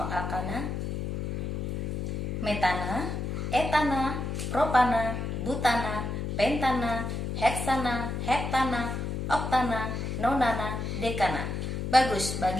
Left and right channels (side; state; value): left; noise; hum, 3 dB below the sound